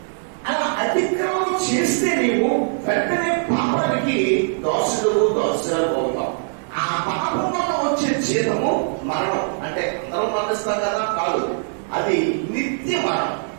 అలా అతిక్రమం చేస్తే నీవు వెంటనే పాపానికి దోషురాలు అవుతావు. ఆ పాపం వల్ల వచ్చే జీతము మరణం. అంటే అందరం మరణిస్తాం కదా? కాదు, అది నిత్య మరణం.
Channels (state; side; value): silent; left; digital silence